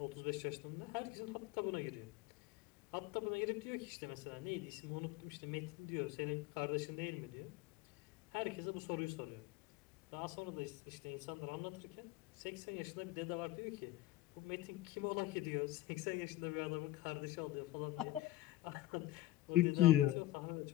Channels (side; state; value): right; quieter; 16.3 dB